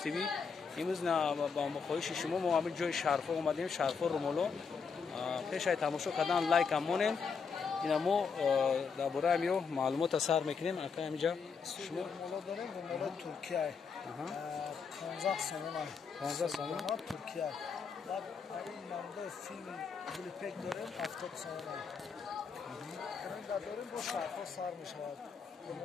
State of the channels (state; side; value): quieter; right; 5.7 dB